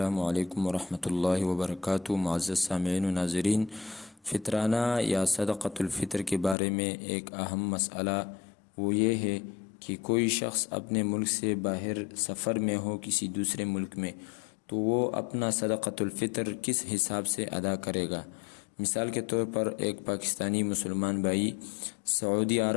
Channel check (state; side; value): drops out; right; at 6.6 s